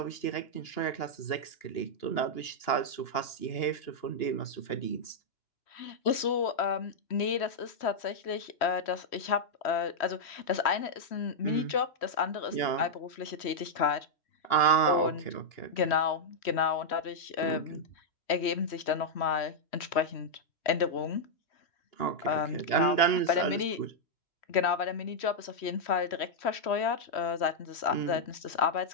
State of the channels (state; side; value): late; right; 3.1 ms